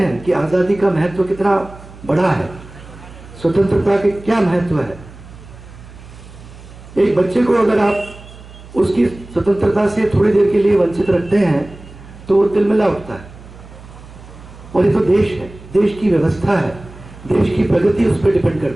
कि आज़ादी का महत्व कितना बड़ा है, स्वतंत्रता के क्या महत्व है। एक बच्चे को अगर आप उसकी स्वतंत्रता से थोड़ी देर के लिए वंचित रखते हैं तो वो तिलमिला उठता है। और ये तो देश है, देश की व्यवस्था है, देश की प्रगति उस पर डिपेंड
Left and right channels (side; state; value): right; noise; hum, 19 dB below the sound